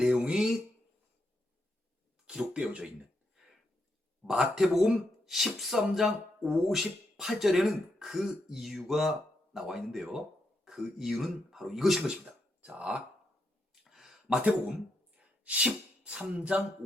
기록되어져 있는 마태복음 13장 58절에는 그 이유가 나와 있는데요. 그 이유는 바로 이것인 것입니다. 자, 마태복음 13장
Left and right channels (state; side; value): normal; both; correlation 0.81